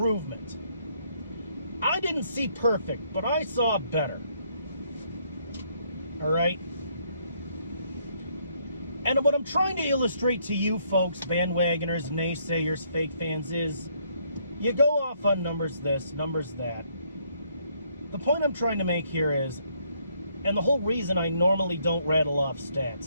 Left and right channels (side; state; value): both; inverted; correlation -0.69